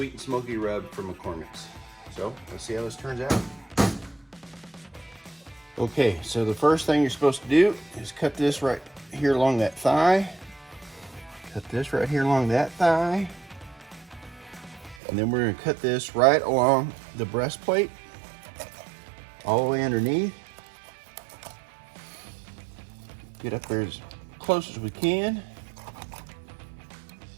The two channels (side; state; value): left; drops out; at 15.0 s